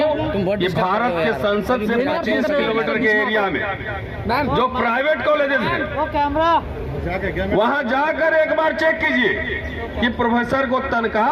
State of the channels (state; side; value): identical; both; correlation 1.00